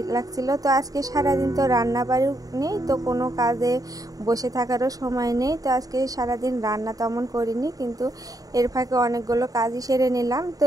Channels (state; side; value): late; left; 0.18 ms